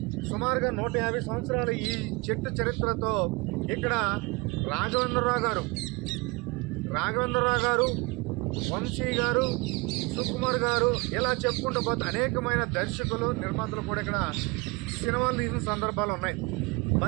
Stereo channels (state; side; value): quieter; left; 26.6 dB